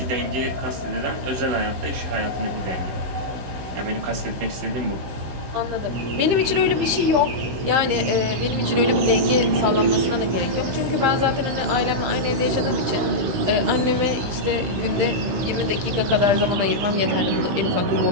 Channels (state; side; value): late; left; 16 ms